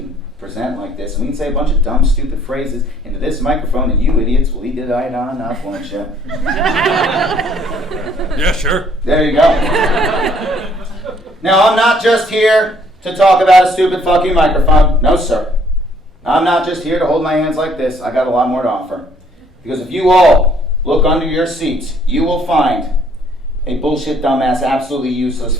present like this, and we can say a bunch of dumb, stupid phrases into this microphone, and you idiots will eat it right on up, won't you? Yeah, sure. There you go. Now, I'm not just here to talk about a stupid fucking microphone. No, sir. I'm not just here to hold my hands like this. I got a lot more to offer. Because if you all look under your seats, you will find a bullshit, dumbass, absolutely useless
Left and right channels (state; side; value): normal; both; correlation 0.63